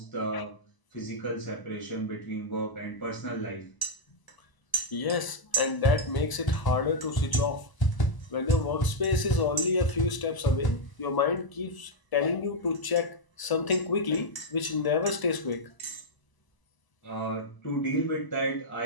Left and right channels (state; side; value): late; right; 1.0 ms